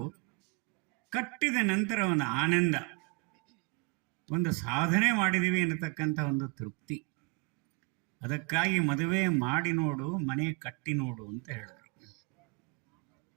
ಕಟ್ಟಿದ ನಂತರ ಒಂದು ಆನಂದ, ಒಂದು ಸಾಧನೆ ಮಾಡಿದ್ದೀವಿ ಅನ್ನತಕ್ಕಂಥ ಒಂದು ತೃಪ್ತಿ. ಅದಕ್ಕಾಗಿ ಮದುವೆ ಮಾಡಿ ನೋಡು, ಮನೆ ಕಟ್ಟಿ ನೋಡು ಅಂತ ಹೇಳಿದರು.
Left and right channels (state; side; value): quieter; left; 30.1 dB